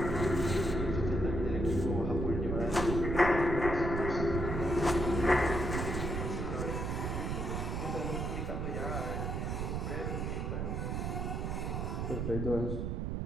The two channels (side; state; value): right; noise; rumble, 1 dB below the sound